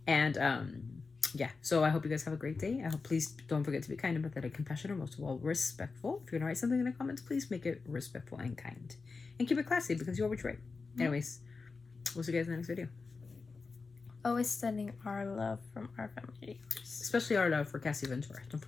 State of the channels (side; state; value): right; quieter; 4.4 dB